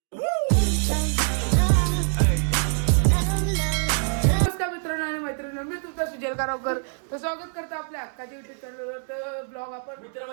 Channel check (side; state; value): left; silent; digital silence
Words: मित्रांनो आणि मैत्रिणी मी तुमचा सुजल कारवकर तर स्वागत करतो आपल्या हक्काच्या युट्यूब चॅनलवर. तर ब्लॉग आपण